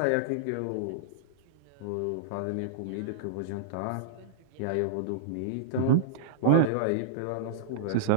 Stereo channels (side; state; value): both; different; correlation -0.02